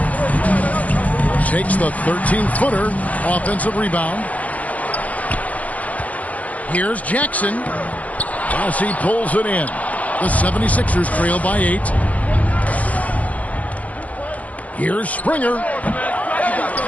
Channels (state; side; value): late; right; 0.071 ms